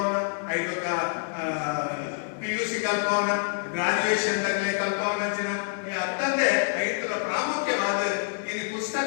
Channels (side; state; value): right; silent; 57 dB below the other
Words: ಐದಕ್ಕ PUC ಕಲ್ಪವನ ಗ್ರಾಜುಯೇಷನ್ ದಾಖಲೆ ಕಲ್ಪವನ ಅಂಚಿನ ಈ ಅತ್ತಂದೆ ಐದರ ಪ್ರಾಮುಖ್ಯವಾದ ಇನ್ನು